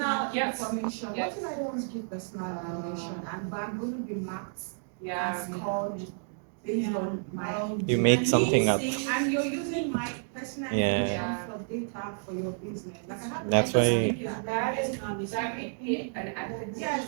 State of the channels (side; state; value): left; silent; digital silence